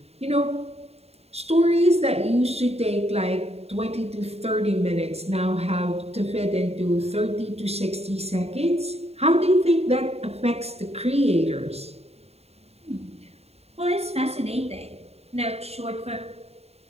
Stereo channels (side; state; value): left; late; 0.30 ms